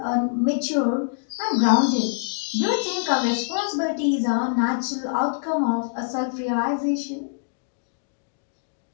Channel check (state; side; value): silent; right; digital silence